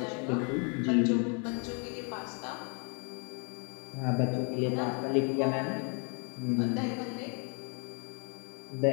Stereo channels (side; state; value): right; quieter; 36.9 dB